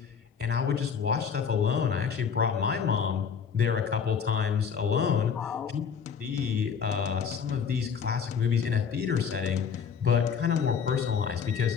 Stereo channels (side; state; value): right; quieter; 6.7 dB